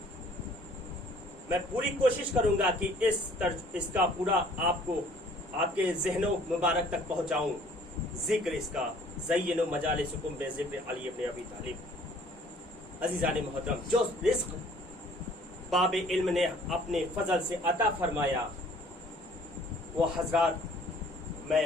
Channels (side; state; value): both; normal; correlation 0.55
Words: मैं पूरी कोशिश करूंगा कि इसका पूरा आपको आपके ज़हनों मुबारक तक पहुंचाऊं। जिक्र इसका ज़य्यिनू मजालिसिकुम बिज़िक्र अली इब्न अबी तालिब। अज़ीज़ान मुहतरम, जो रिज़्क़ बाब इल्म ने अपने फजल से अता फरमाया वो हजरात मैं